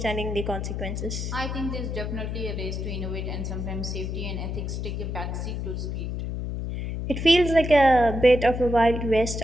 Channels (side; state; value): left; noise; hum, 4 dB below the sound